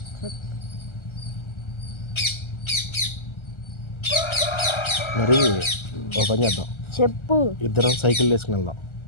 చెప్పు. మరి ఓపెన్ చేద్దాం. చెప్పు. ఇద్దరం సైకిల్ వేసుకుని వెళ్దాం.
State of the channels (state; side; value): late; right; 1.3 ms